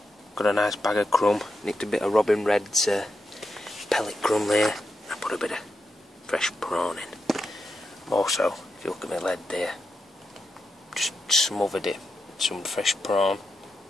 Got a nice bag of crumb, nicked a bit of Robin Red's pellet crumb there. I put a bit of fresh prawn in. Also, if you look at my lead there, just smothered it with some fresh prawn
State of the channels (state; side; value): normal; both; correlation 0.87